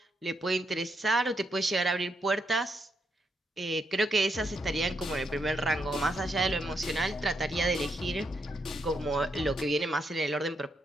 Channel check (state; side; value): normal; both; correlation 0.79